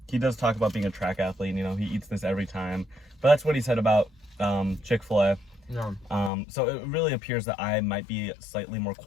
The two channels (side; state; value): right; drops out; at 6.3 s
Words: he does talk about being a track athlete. He eats this every time. But that's what he said about Chick-fil-A. Yeah. So it really appears that I might be slightly more